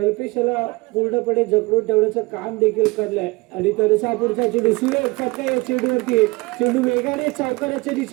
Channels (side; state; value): left; quieter; 24.0 dB